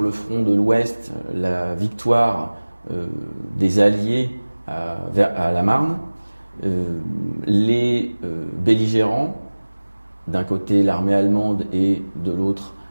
le front de l'Ouest la victoire des Alliés à la Marne, les belligérants, d'un côté l'armée allemande et de l'autre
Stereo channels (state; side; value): inverted; both; correlation -1.00